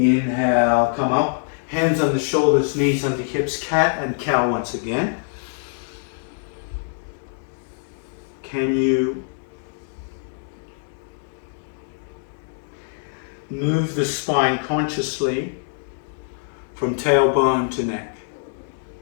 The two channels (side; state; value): right; silent; digital silence